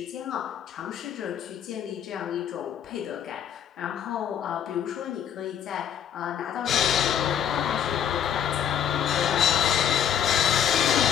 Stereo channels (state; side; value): quieter; right; 9.2 dB